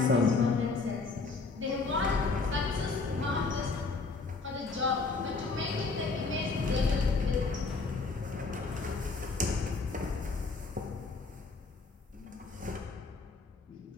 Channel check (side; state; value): right; quieter; 4.0 dB